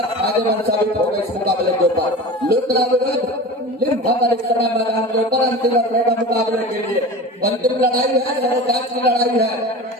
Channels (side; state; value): both; normal; correlation 0.33